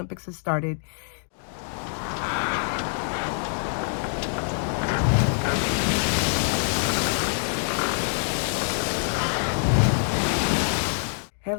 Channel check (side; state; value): right; silent; digital silence